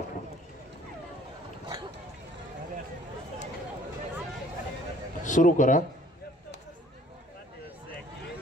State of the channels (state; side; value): normal; both; correlation 0.56